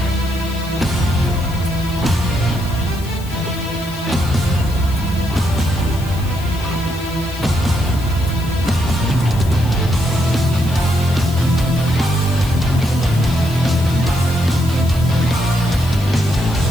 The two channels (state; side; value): noise; left; hiss, 17 dB below the sound